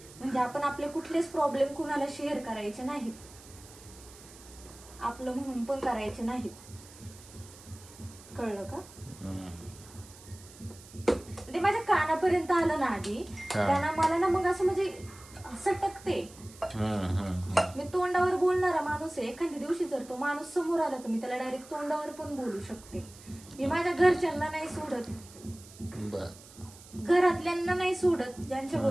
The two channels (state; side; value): noise; right; hiss, 20 dB below the sound